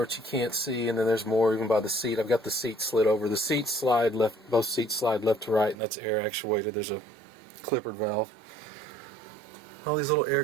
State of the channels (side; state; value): left; drops out; at 5.8 s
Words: which you can't see, and then there's more even by the seat. I've got the seat slid over. The seats slide left, both seats slide left to right, and that's air actuated. There's a clippered valve. All these little